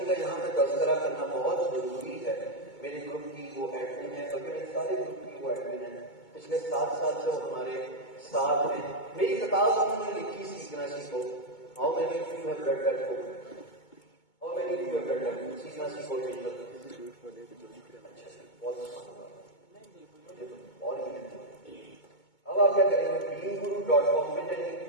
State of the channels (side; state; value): right; late; 2.2 ms